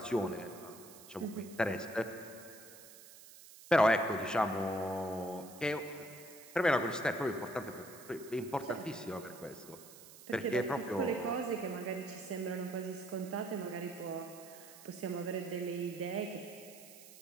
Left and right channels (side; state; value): right; noise; hiss, 18 dB below the sound